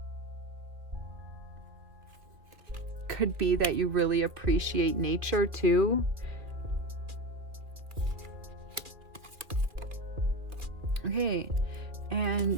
Could be that you really appreciate nature too. Okay.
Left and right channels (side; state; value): left; late; 2.2 ms